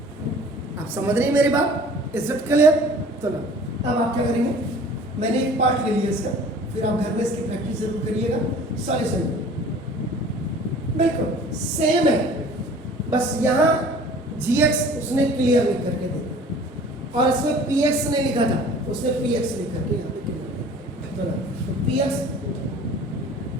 आप समझ रहे हैं मेरी बात, इज इट क्लियर? तो ना अब आप क्या करेंगे, मैंने एक पार्ट ले लिया इसका, फिर आप घर में इसकी प्रैक्टिस जरूर करिएगा। सॉल्यूशन बिल्कुल सेम है, बस यहाँ gx उसने क्लियर लिख करके दे दिया और इसमें px ने लिखा था, उसने px लिख करके यहाँ पे क्लियर तो ना, तो px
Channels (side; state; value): both; normal; correlation 0.47